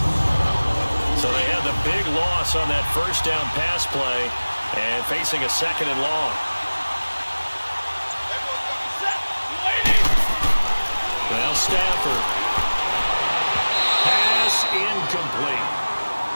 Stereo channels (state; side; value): inverted; both; correlation -1.00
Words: So they had the big loss on that first down pass play and facing a 2nd and long. Now Stafford. Pass incomplete.